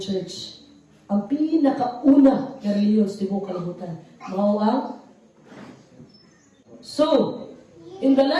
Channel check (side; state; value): both; identical; correlation 1.00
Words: church. Ang pinakauna na religious di mo kalimutan. Mao ang So, in the